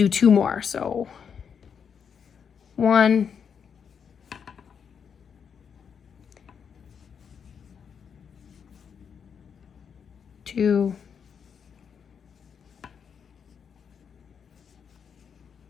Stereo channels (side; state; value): right; quieter; 7.0 dB